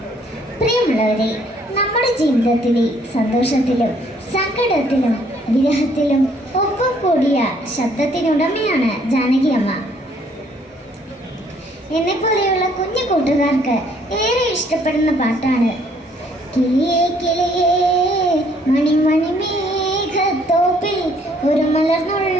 പ്രിയമുള്ളവരെ, നമ്മുടെ ജീവിതത്തിലെ സന്തോഷത്തിലും സങ്കടത്തിലും വിരഹത്തിലും ഒപ്പം കൂടിയ ശബ്ദത്തിനുടമയാണ് ജാനകി അമ്മ. എന്നെപ്പോലെയുള്ള കുഞ്ഞു കൂട്ടുകാർക്ക് ഏറെ ഇഷ്ടപ്പെടുന്ന പാട്ടാണ് കിളിയേ കിളിയേ മണിമണി മേഘത്തോപ്പിൽ ഒരു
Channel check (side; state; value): both; normal; correlation 0.64